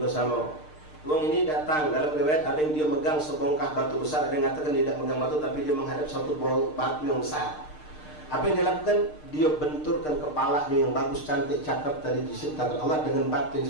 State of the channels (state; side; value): late; right; 6.6 ms